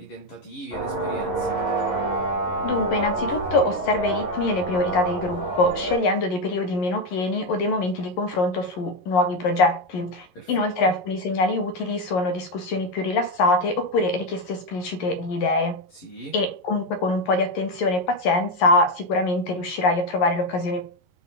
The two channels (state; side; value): late; right; 11 ms